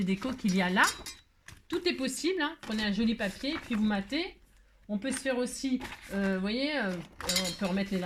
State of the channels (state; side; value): identical; both; correlation 1.00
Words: déco qu'il y a là. Tout est possible, hein. Prenez un joli papier, puis vous matez. On peut se faire aussi, vous voyez, on peut remettre les